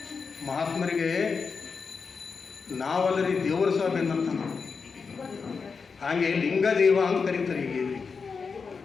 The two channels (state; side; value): quieter; right; 5.2 dB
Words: ಮಹಾತ್ಮರಿಗೆ ನಾವಲ್ಲರಿ ದೇವರು ಸಹ ಬೆನ್ನಂತ ನಾವು, ಹಾಗೆ ಲಿಂಗದೇವ ಅಂತ ಕರೀತಾರೆ. ಈಗ